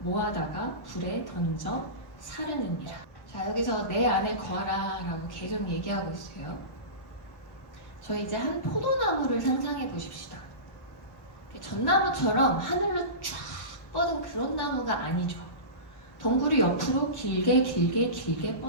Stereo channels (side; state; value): right; late; 1.4 ms